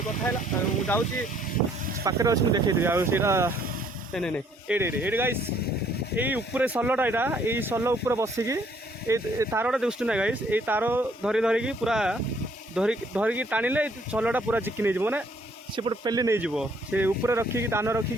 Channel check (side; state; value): both; normal; correlation 0.64